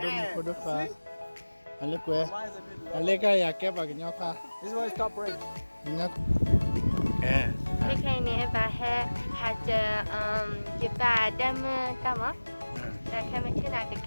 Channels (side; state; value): both; inverted; correlation -1.00